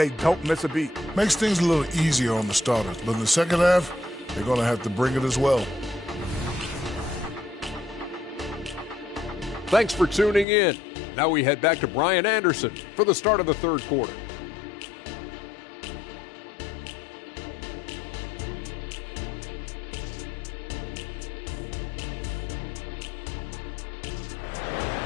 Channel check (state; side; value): drops out; right; at 10.5 s